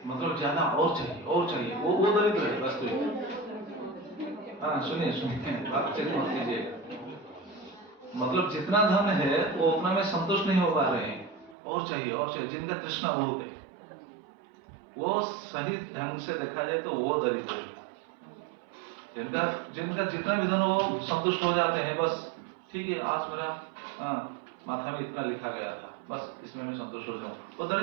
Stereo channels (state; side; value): drops out; left; at 11.6 s